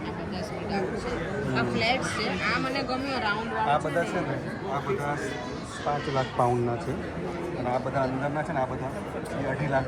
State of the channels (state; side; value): identical; both; correlation 1.00